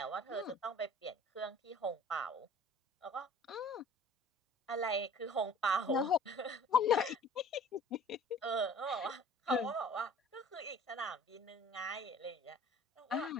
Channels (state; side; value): normal; both; correlation 0.47